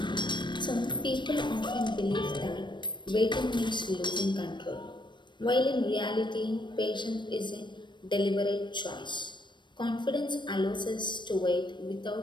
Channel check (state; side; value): late; right; 0.22 ms